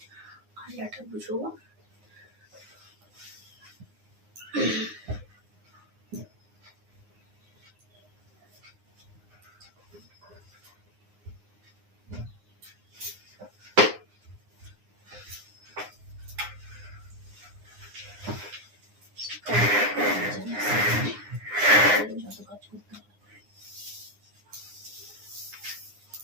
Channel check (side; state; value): left; late; 9.7 ms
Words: আলনাটা বুঝবো। যত কাজ করতে হবে।